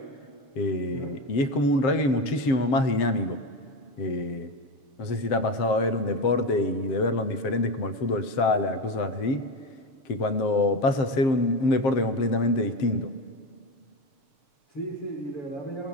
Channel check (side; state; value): right; late; 7.5 ms